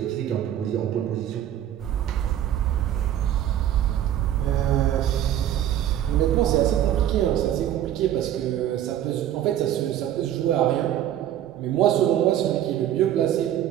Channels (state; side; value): quieter; left; 11.4 dB